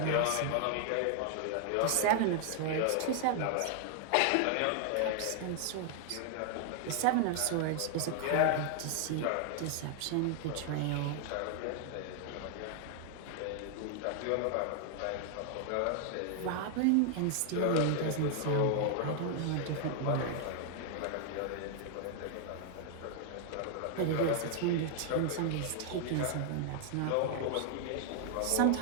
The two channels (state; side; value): different; both; correlation 0.00